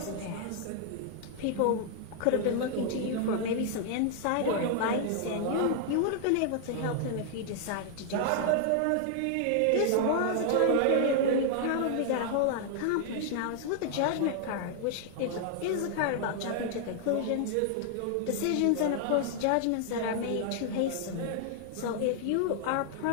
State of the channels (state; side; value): different; both; correlation 0.00